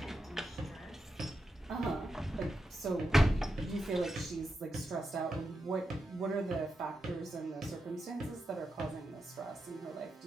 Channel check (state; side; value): normal; both; correlation 0.87